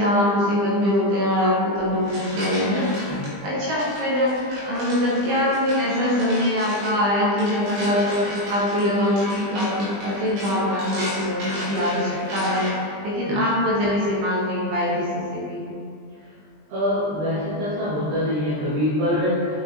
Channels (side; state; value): left; late; 20 ms